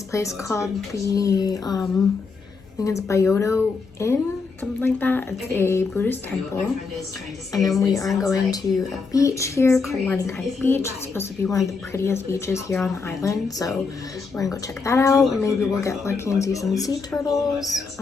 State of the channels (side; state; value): right; quieter; 4.6 dB